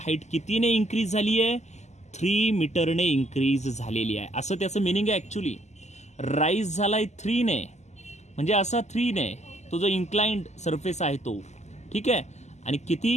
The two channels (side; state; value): right; late; 0.33 ms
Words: हाईट कितीने इन्क्रीज झाली आहे, 3 मीटरने इन्क्रीज झालेली आहे. असं त्याचं मिनिंग आहे. ॲक्च्युली राईज झालाय 3 ने, म्हणजे असा 3 ने तो जो इन्क्लाइंड सरफेस आहे तो, ठीक आहे, आणि